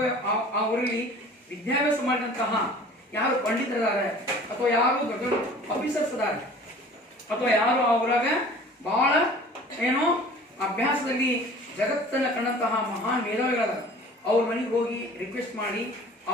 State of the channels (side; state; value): both; normal; correlation 0.45